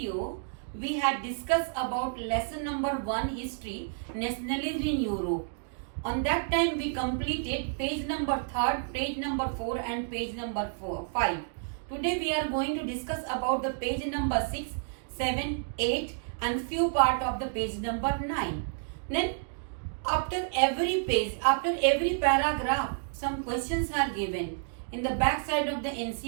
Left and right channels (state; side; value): silent; left; digital silence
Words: we had discussed about lesson number 1, history, nationalism in Europe. On that time, we completed page number 3, page number 4 and page number 5. Today we are going to discuss about the page number 6, 7, 8 and few part of the page number 9. Then after every page, after every paragraph, some questions are given in the back side of the